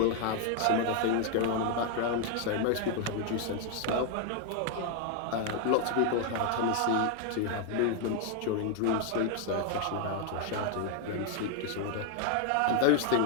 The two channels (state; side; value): different; both; correlation 0.01